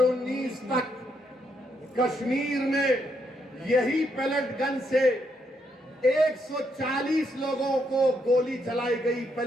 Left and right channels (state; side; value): normal; both; correlation 0.77